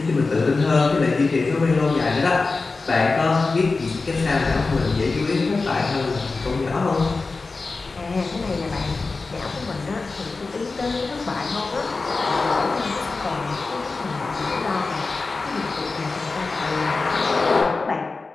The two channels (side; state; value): right; quieter; 3.9 dB